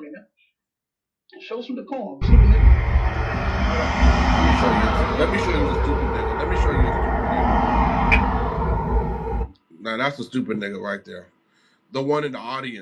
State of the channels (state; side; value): identical; both; correlation 1.00